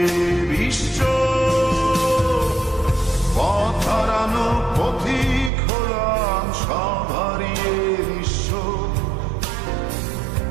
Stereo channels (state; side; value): drops out; left; at 5.5 s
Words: বিশ্ব? পথ হারানো পথিক হলাম, সব হারিয়ে নিশ্চয়।